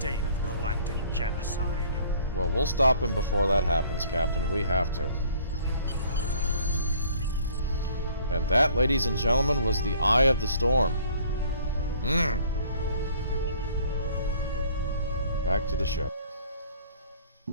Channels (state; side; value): inverted; both; correlation -0.55